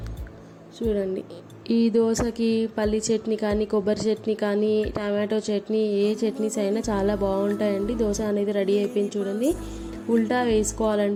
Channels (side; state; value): both; identical; correlation 1.00